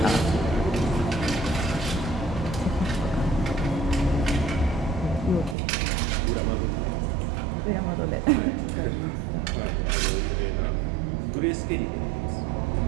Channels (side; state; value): left; drops out; at 5.6 s